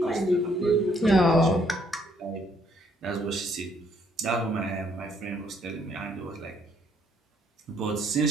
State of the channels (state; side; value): normal; both; correlation 0.68